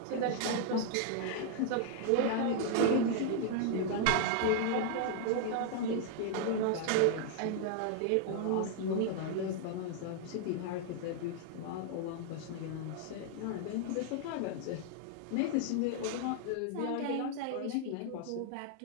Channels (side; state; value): both; different; correlation 0.00